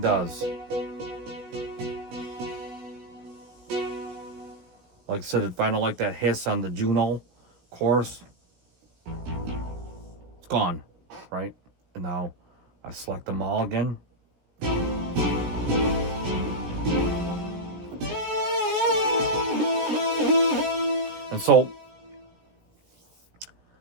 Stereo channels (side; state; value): left; late; 17 ms